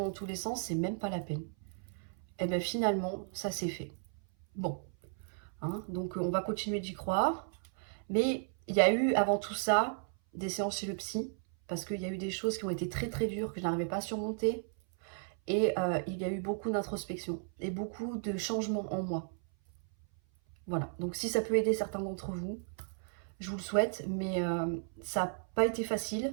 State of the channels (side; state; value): left; silent; 55 dB below the other